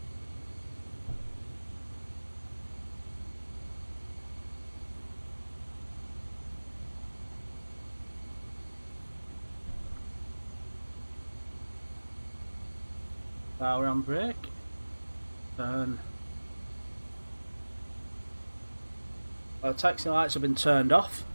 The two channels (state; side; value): inverted; both; correlation -1.00